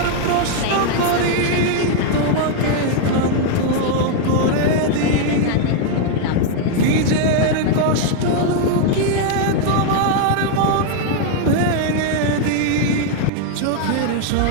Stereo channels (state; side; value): different; both; correlation 0.00